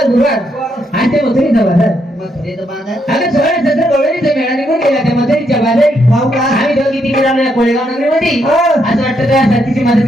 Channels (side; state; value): both; normal; correlation 0.77